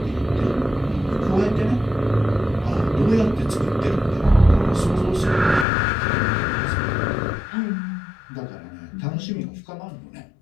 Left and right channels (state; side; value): drops out; right; at 5.7 s